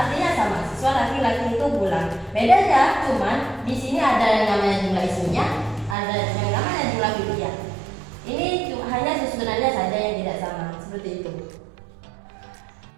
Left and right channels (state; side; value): drops out; left; at 6.0 s